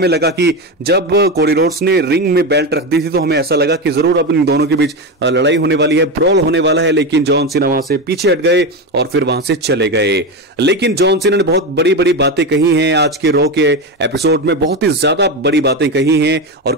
लगा कि जब कोडी रोड्स ने रिंग में बेल्ट रख दी थी तो हमें ऐसा लगा कि जरूर अब इन दोनों के बीच लड़ाई होने वाली है, ब्रॉल होने वाला है, लेकिन जॉन सीना वहां से पीछे हट गए और फिर वहां से चले गए। लेकिन जॉन सीना ने बहुत बड़ी बड़ी बातें कही हैं आज के रॉ के एपिसोड में, बहुत ही ज्यादा बड़ी बातें कही हैं और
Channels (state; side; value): normal; both; correlation 0.17